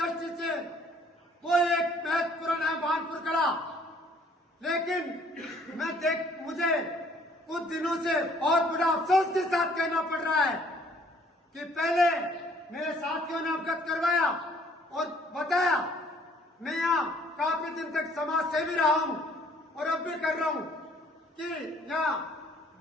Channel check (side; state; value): both; normal; correlation 0.59